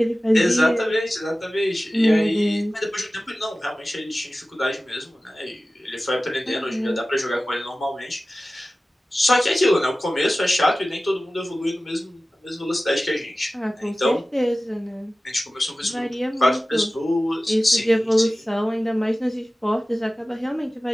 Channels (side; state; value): both; normal; correlation 0.96